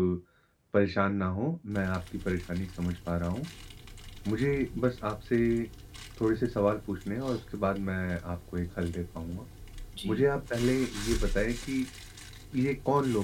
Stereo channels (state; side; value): identical; both; correlation 1.00